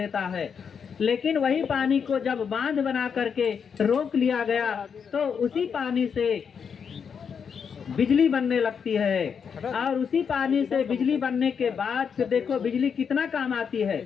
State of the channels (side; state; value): right; quieter; 6.7 dB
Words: है। लेकिन वही पानी को जब बांध बना करके रोक लिया गया तो उसी पानी से बिजली बनने लगती है। और उसी पानी से बिजली बनने के बाद फिर देखो बिजली कितना काम आती